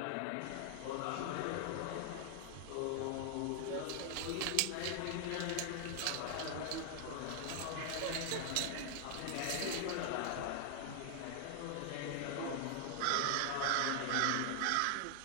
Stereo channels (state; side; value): different; both; correlation 0.00